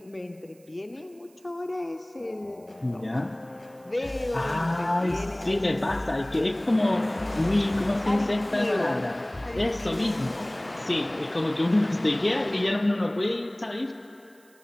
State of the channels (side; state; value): right; noise; hiss, 30 dB below the sound